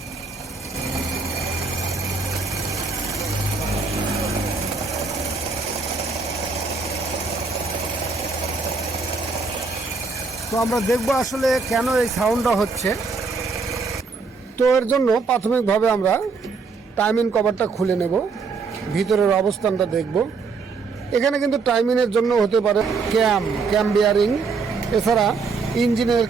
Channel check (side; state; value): left; quieter; 4.5 dB